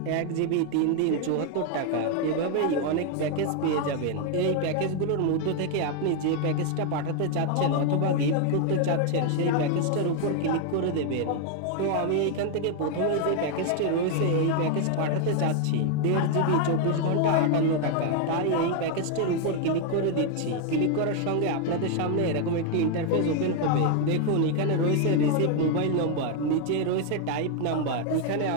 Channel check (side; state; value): both; different; correlation 0.01